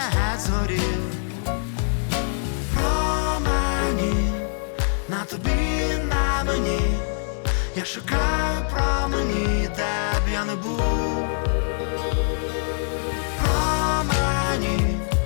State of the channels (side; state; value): right; silent; digital silence